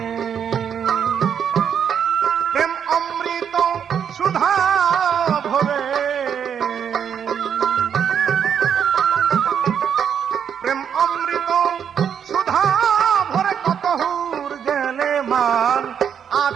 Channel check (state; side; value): quieter; left; 8.0 dB